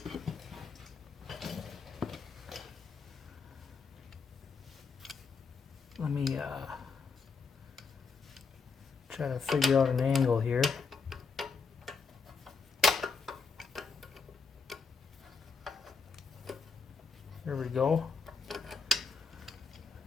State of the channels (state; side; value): quieter; right; 4.9 dB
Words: let me try to figure out an angle here. There we go.